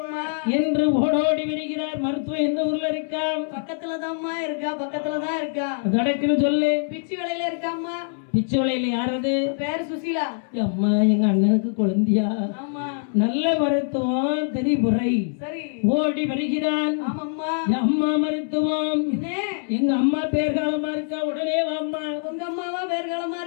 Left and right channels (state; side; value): silent; right; 63 dB below the other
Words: என்று ஓடோடி வருகிறார். மருத்துவம் எந்த ஊர்ல இருக்கா? பக்கத்துலதாம்மா இருக்கா பக்கத்துலதான் இருக்கா கடக்குன்னு சொல்லு. பிச்சி வேலையில இருக்காம்மா பிச்சு வளையில யாரது? பேரு சுசீலா அம்மா எங்க அண்ணனுக்கு குழந்தையா? ஆமா நல்ல மருத்துவம் தெரிபுரை சரி ஓடி வருகிறான். ஆமாம்மா அம்மா மருத்துவம் என்ன எங்க அம்மா பேர்காலமா இருக்கா, உடனே வாம்மா. உங்க அம்மாவா பேர்காலமா